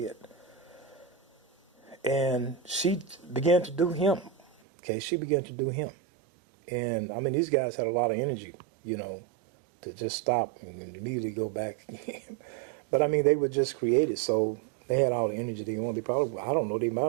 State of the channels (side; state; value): left; drops out; at 4.5 s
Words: And she began to do him. Okay, she began to do him. And, I mean, these guys had a lot of energy, to just stop and immediately go back. But, I mean, they were just created, so they had all the energy they wanted. They probably, I don't know, they